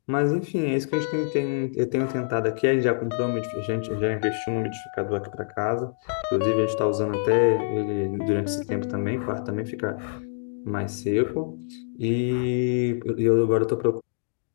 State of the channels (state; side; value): silent; right; digital silence